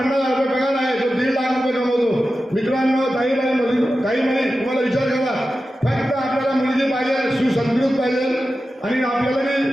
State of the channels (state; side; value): normal; both; correlation 0.93